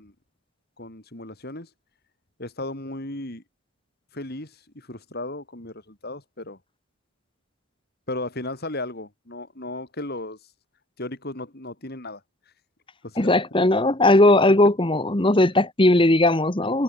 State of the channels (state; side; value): normal; both; correlation 0.54